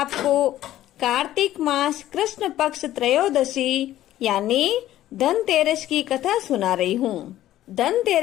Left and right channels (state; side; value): quieter; right; 13.6 dB